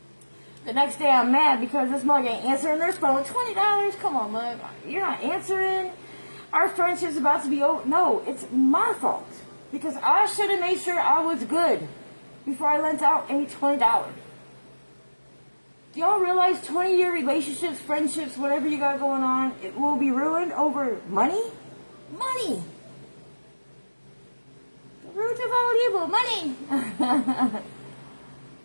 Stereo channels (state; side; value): inverted; both; correlation -1.00